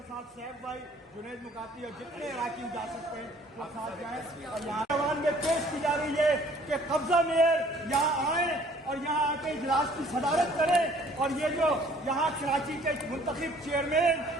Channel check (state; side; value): normal; both; correlation 0.56